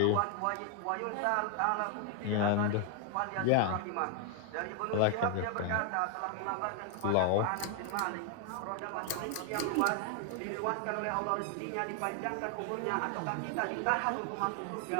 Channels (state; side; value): different; both; correlation 0.00